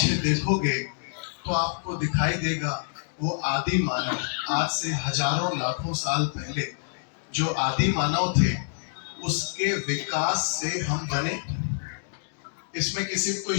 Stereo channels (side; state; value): right; silent; digital silence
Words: देखोगे तो आपको दिखाई देगा वो आदि मानव, आज से हजारों लाखों साल पहले जो आदि मानव थे उसके विकास से हम बने। इसमें किसी को